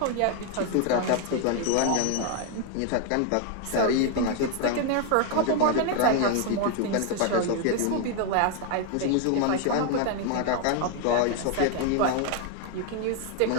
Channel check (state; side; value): different; both; correlation 0.01